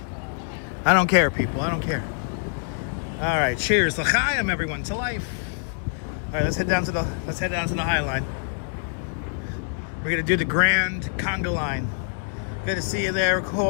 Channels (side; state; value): right; silent; 62 dB below the other